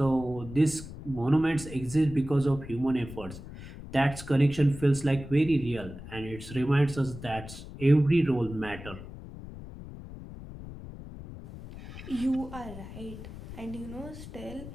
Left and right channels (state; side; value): noise; left; rumble, 13 dB below the sound